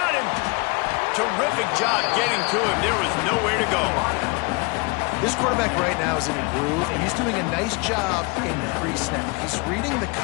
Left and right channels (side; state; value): right; quieter; 28.4 dB